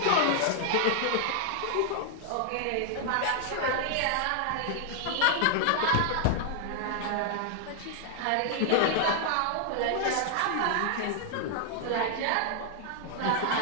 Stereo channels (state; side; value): different; both; correlation 0.00